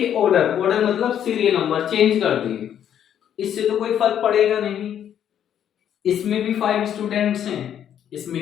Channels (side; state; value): right; quieter; 9.7 dB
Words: ऑर्डर मतलब सीरियल नंबर चेंज कर दिए। इससे तो कोई फर्क पड़ेगा नहीं, इसमें भी 5 स्टूडेंट्स हैं,